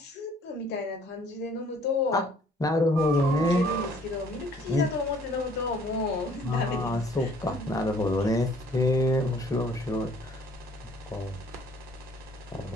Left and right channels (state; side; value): normal; both; correlation 0.58